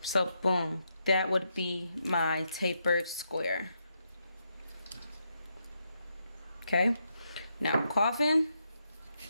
So boom, that would be my tapered square. Okay, now Coffin,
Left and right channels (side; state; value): both; inverted; correlation -0.81